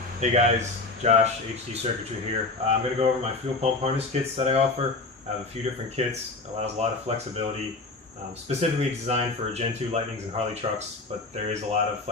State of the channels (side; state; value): right; quieter; 3.4 dB